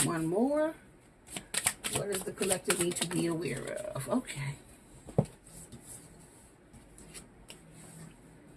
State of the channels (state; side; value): identical; both; correlation 1.00